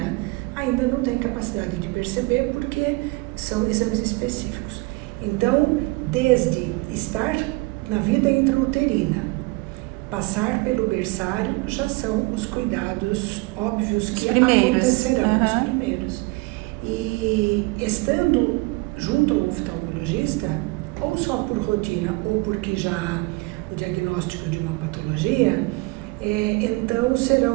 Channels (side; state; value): left; quieter; 24.7 dB